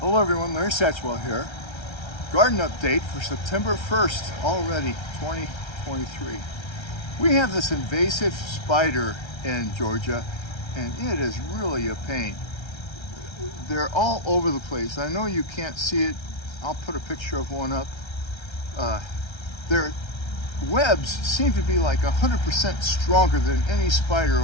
Hello everyone, Larry Satchwell here. Garden update for September 1st, already 2023. We have this invasive spider in Georgia and it is really a pain. They're all over the place. I know you can't see it. I'll put a picture of one up. Their webs seem to be like 100% stronger than any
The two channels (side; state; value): right; late; 1.3 ms